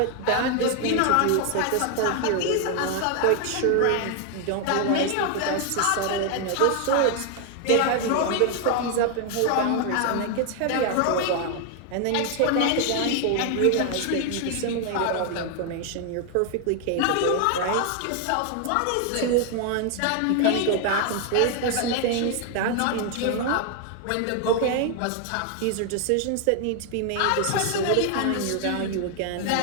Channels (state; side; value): different; both; correlation 0.00